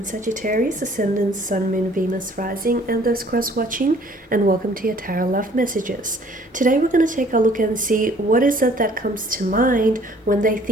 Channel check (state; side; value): normal; both; correlation 0.57